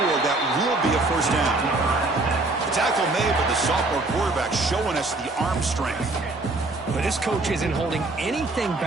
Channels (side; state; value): left; quieter; 3.1 dB